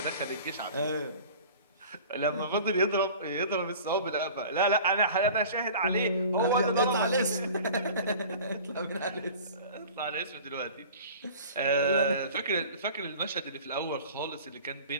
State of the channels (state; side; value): inverted; both; correlation -0.42